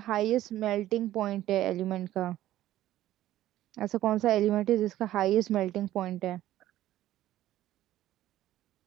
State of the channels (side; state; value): left; quieter; 13.9 dB